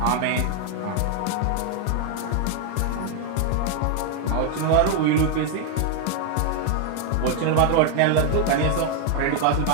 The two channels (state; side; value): different; both; correlation 0.00